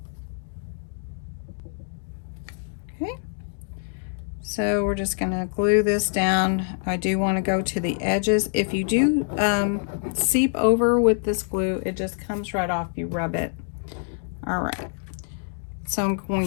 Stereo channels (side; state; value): right; silent; 61 dB below the other